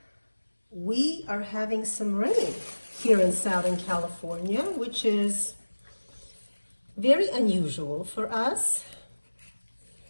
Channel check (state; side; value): inverted; both; correlation -1.00